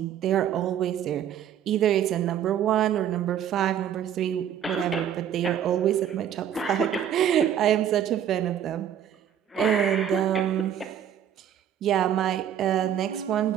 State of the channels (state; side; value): quieter; left; 9.7 dB